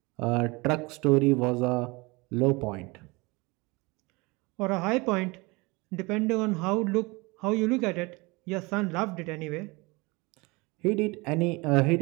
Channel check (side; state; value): left; quieter; 25.3 dB